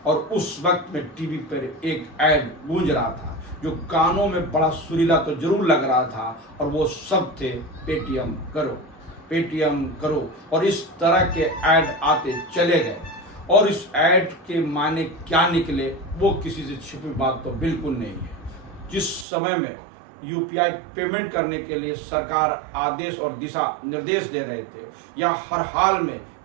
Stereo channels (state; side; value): drops out; left; at 19.2 s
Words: और उस वक्त में टीवी पर एक ऐड गूंज रहा था जो कानों में बड़ा सुरीला तो जरूर लग रहा था, और वो सब थे पेटीएम करो, पेटीएम करो। और इस तरह के ऐड आते चले गए, और इस ऐड के माने क्या निकले वो किसी से छिपी बात तो बिल्कुल नहीं है। जिस समय में यूपीआई पेमेंट करने के लिए सरकार आदेश और दिशा निर्देश दे रहे थे, या हर हाल में